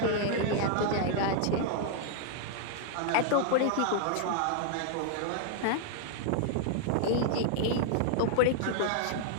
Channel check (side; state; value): both; different; correlation -0.01